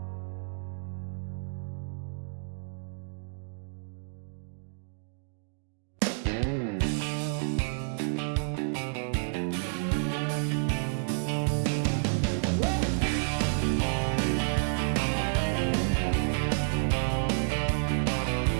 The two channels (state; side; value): silent; left; digital silence